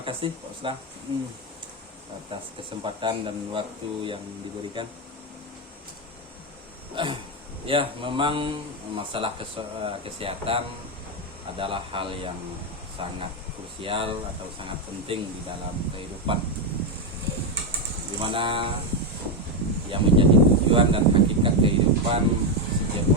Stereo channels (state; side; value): normal; both; correlation 0.07